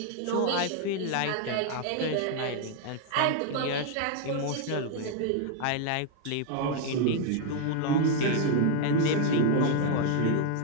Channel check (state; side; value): different; both; correlation 0.00